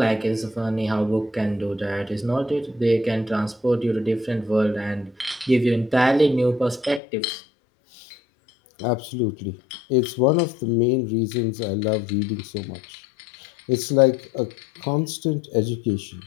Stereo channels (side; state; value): right; drops out; at 7.0 s